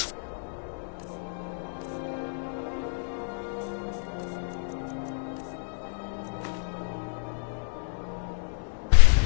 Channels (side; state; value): right; silent; digital silence